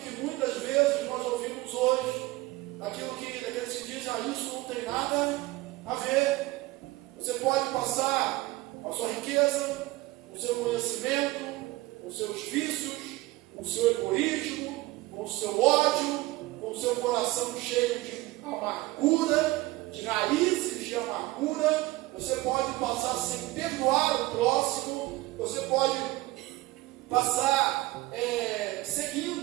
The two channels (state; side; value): quieter; left; 19.5 dB